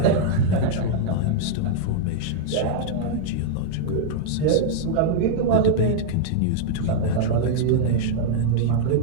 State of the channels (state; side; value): different; both; correlation -0.01